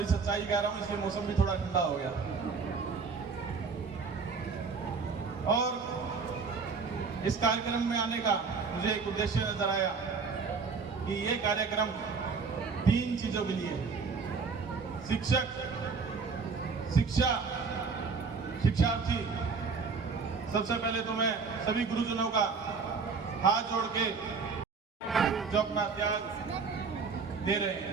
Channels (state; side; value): quieter; left; 5.0 dB